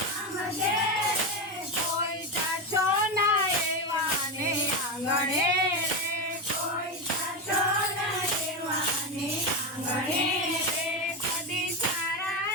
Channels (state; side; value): normal; both; correlation 0.14